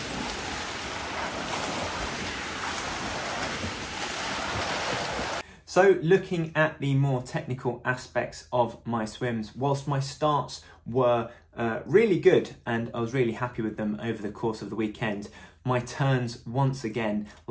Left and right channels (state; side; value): identical; both; correlation 1.00